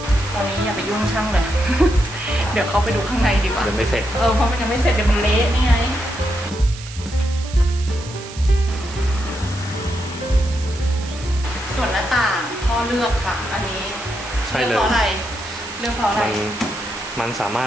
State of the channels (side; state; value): right; noise; hiss, 14 dB below the sound